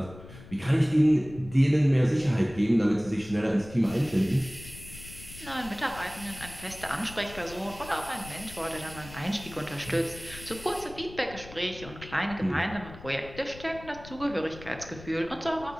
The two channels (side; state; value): left; noise; rumble, 16 dB below the sound